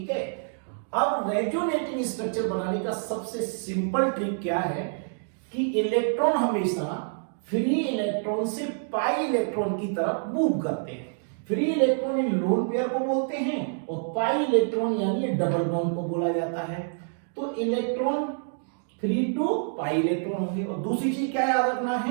है. अब रेजोनेटिंग स्ट्रक्चर बनाने का सबसे सिंपल ट्रिक क्या है कि इलेक्ट्रॉन हमेशा फ्री इलेक्ट्रॉन से पाई इलेक्ट्रॉन की तरफ मूव करते हैं. Free electron in lone pair को बोलते हैं और पाई इलेक्ट्रॉन यानी डबल बॉन्ड को बोला जाता है. तो electron free to pi electron होंगे. और दूसरी चीज क्या याद रखना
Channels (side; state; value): left; silent; digital silence